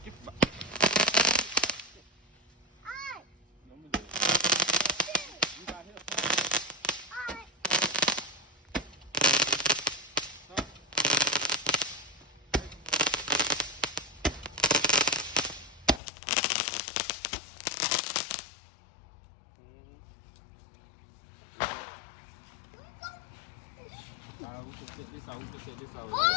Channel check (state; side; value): drops out; right; at 16.0 s